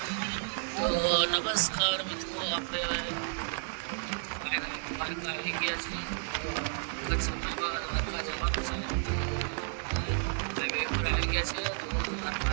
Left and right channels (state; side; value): silent; left; 56 dB below the other